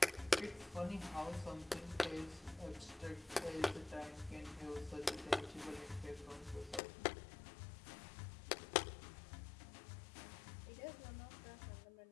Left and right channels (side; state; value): right; drops out; at 6.8 s